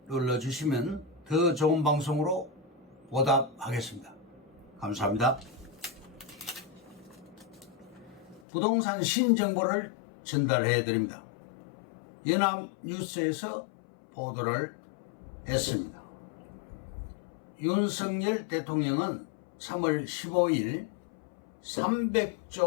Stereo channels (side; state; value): right; drops out; at 8.4 s